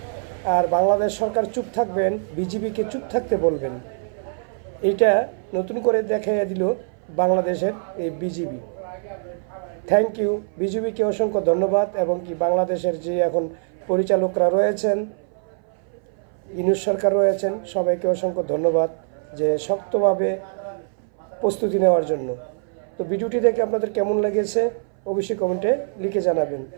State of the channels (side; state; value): left; silent; 59 dB below the other